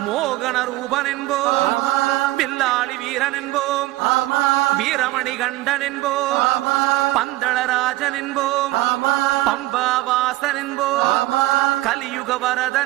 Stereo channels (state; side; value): quieter; left; 17.9 dB